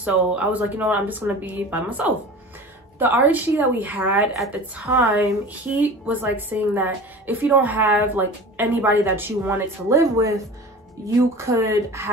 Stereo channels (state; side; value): normal; both; correlation 0.37